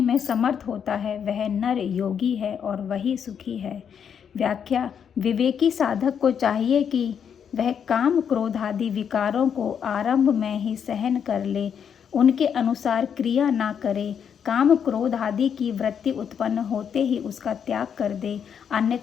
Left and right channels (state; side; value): quieter; right; 7.8 dB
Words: में समर्थ होता है वह नर योगी है और वही सुखी है। व्याख्या: विवेकी साधक को चाहिए कि वह काम क्रोध आदि विकारों को आरंभ में ही सहन कर ले, उनके अनुसार क्रिया ना करे। काम क्रोध आदि की वृत्ति उत्पन्न होते ही उसका त्याग कर दे,